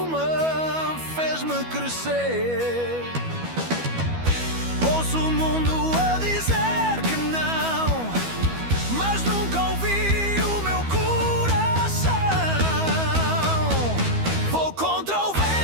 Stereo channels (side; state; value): left; late; 12 ms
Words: fez-me crescer. Ouço o mundo a dizer que não, mas nunca ouvi o meu coração. Vou contra o